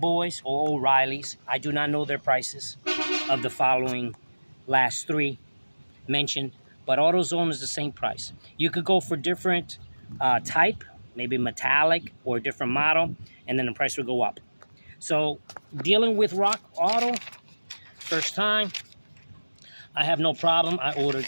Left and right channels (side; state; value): both; inverted; correlation -1.00